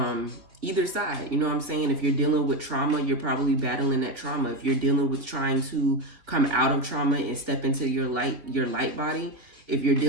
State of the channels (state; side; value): late; left; 3.3 ms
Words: either side. You know what I'm saying? If you're dealing with trauma, you're probably battling that trauma. If you're dealing with trying to come out of trauma and step into your light body, if you're